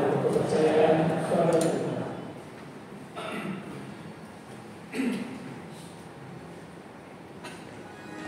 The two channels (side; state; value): both; identical; correlation 1.00